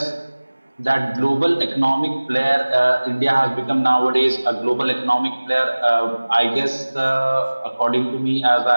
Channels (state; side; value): inverted; both; correlation -1.00